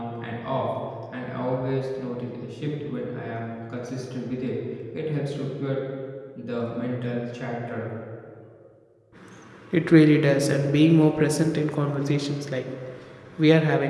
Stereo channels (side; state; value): both; identical; correlation 1.00